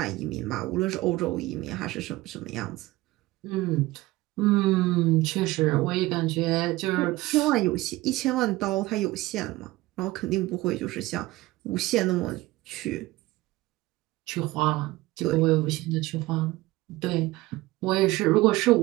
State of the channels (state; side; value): quieter; left; 19.1 dB